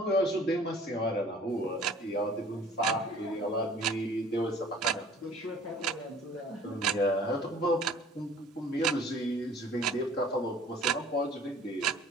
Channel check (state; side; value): normal; both; correlation 0.51